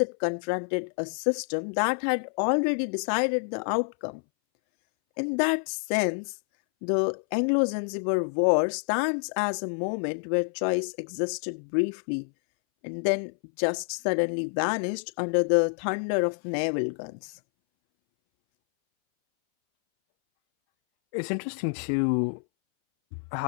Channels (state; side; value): silent; right; 60 dB below the other